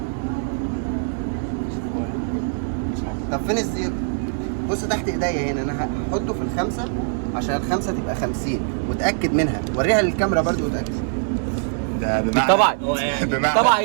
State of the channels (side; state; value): left; silent; digital silence